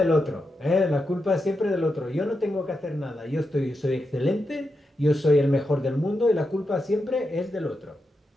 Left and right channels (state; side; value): normal; both; correlation 0.87